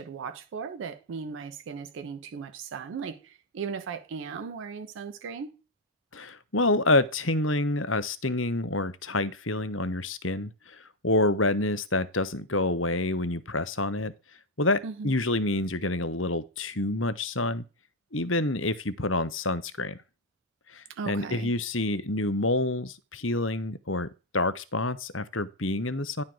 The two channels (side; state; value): both; normal; correlation 0.02